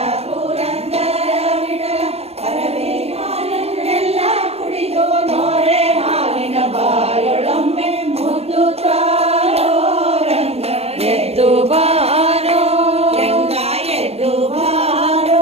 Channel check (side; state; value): left; late; 0.30 ms